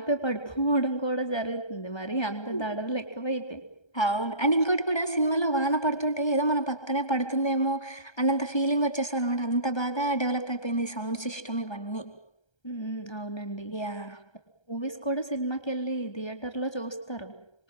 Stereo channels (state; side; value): late; right; 1.3 ms